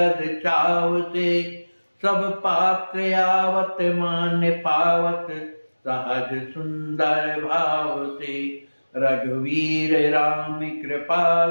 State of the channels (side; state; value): both; inverted; correlation -1.00